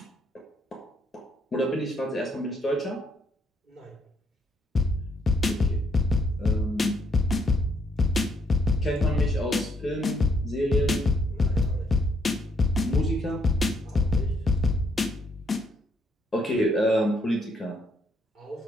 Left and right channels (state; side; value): normal; both; correlation 0.71